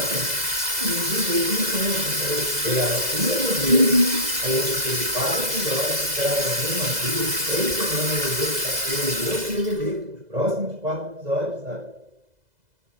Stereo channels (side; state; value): left; late; 2.0 ms